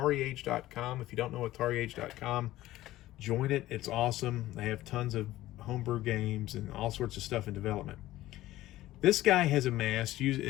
If you don't know AtariAge.com, join it. It's awesome. They have tons of homebrew games and all sorts of stuff in development. This guy has amassed,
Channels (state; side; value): quieter; right; 15.7 dB